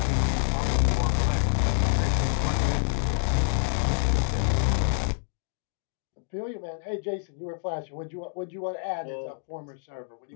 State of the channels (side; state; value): right; silent; digital silence